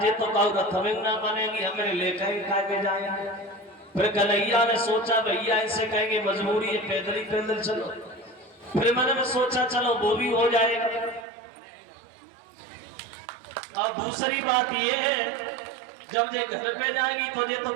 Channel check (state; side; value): drops out; left; at 11.2 s